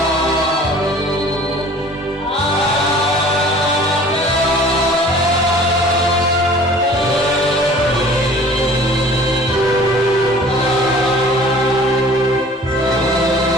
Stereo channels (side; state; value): both; normal; correlation 0.48